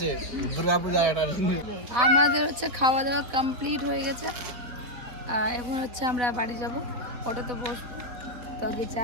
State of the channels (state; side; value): late; left; 4.3 ms